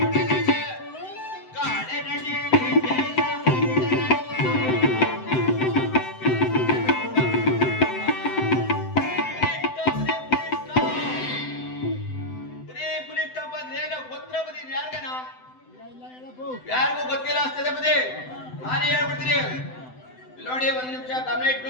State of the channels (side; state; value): right; late; 7.9 ms